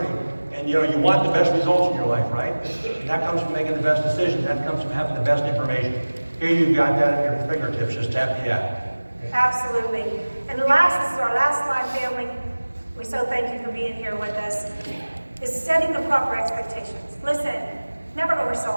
And, you know, you want the best results in your life, right? And that comes from making the best decisions. That comes from having the best information. Here you've got that at your fingertips. Just tap the app. Absolutely. And this is our last slide, family. We so thank you for being here with us. Is setting the proper expectations. Listen. Never oversell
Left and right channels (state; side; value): inverted; both; correlation -1.00